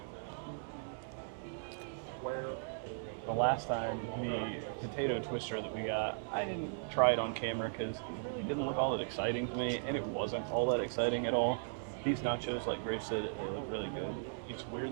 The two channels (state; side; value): silent; left; digital silence